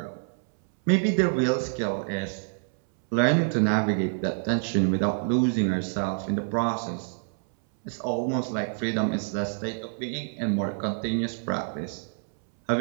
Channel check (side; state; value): left; silent; 60 dB below the other